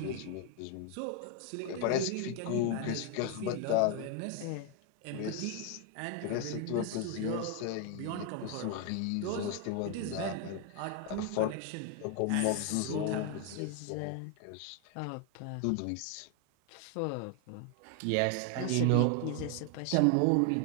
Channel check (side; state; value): both; different; correlation 0.01